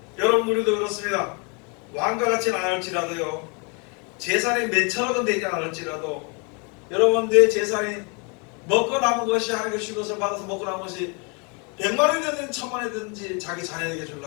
여러분, 우리도 그렇습니다. 왕과 같지는 않을지라도요, 재산이 몇천억은 되지 않을지라도, 여러분, 내 재산이 먹고 남은 것이, 하나님의 준 것을 받아서 먹고 남은 것이 100만원이 되든 1000만원이 되든지 자기 자녀에게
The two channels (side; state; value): right; quieter; 33.4 dB